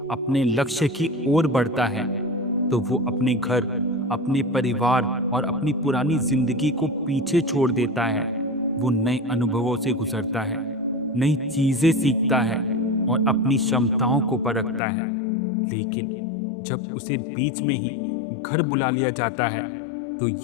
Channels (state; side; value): drops out; right; at 14.8 s